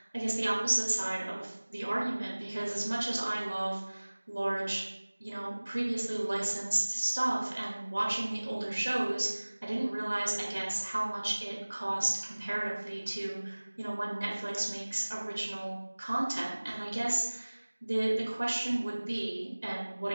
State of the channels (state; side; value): inverted; both; correlation -1.00